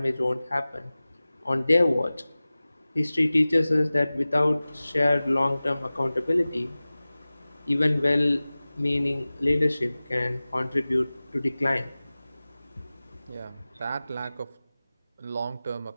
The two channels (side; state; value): both; inverted; correlation -0.98